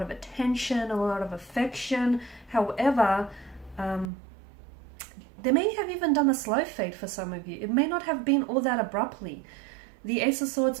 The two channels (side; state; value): left; drops out; at 4.1 s